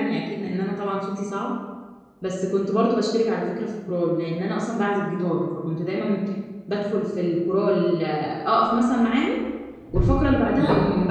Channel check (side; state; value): both; identical; correlation 1.00